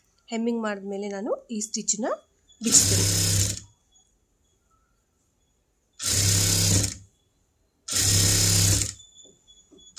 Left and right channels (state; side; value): identical; both; correlation 1.00